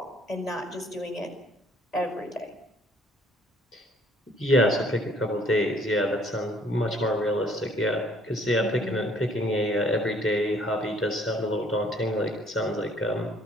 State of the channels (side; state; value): both; normal; correlation 0.61